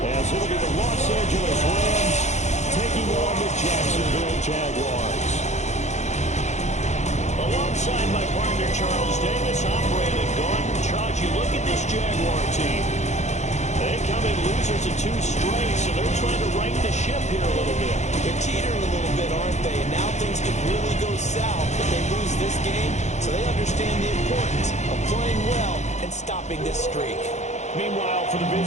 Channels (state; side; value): late; right; 0.33 ms